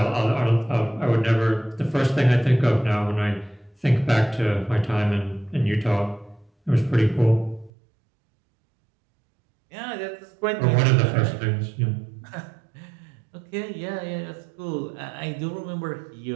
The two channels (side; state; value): left; drops out; at 7.7 s